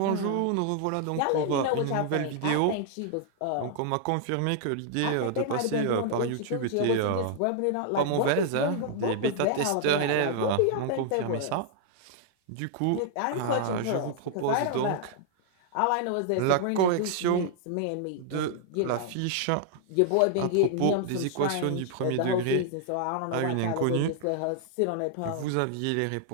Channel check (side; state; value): both; different; correlation 0.00